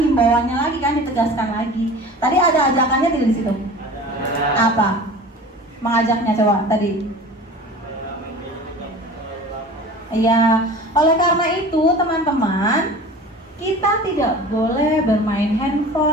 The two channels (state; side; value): normal; both; correlation 0.39